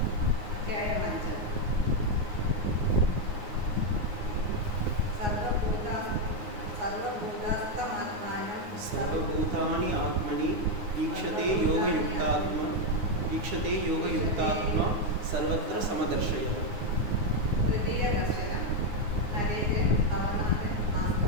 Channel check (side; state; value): left; late; 9.6 ms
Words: अध्यायम् 5 सर्वभूतानि आत्मनि ईक्षते योगयुक्तात्मा सर्वत्र समदर्शयः। तृतीय दर्शനം നരേന്ദ്രൻ ഭവനാഥൻ